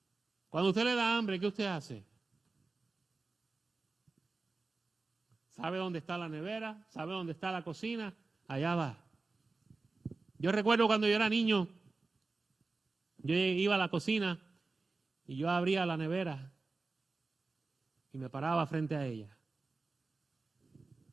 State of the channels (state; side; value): quieter; left; 3.8 dB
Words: Cuando usted le da hambre, ¿qué usted hace? ¿Sabe dónde está la nevera? ¿Sabe dónde está la cocina? Allá va. Yo recuerdo cuando yo era niño, yo iba a la cocina y yo abría la nevera y me paraba frente a ella